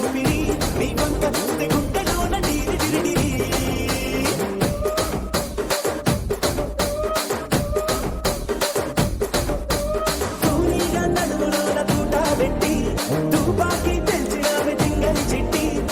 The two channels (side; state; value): both; identical; correlation 1.00